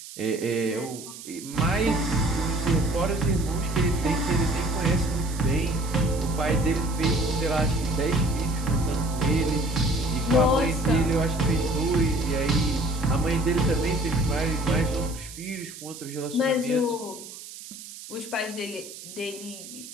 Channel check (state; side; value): noise; right; hiss, 14 dB below the sound